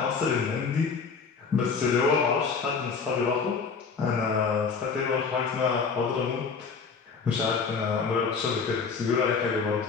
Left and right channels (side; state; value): right; quieter; 5.4 dB